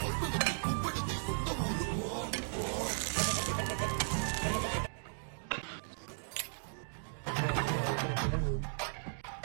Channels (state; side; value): silent; left; digital silence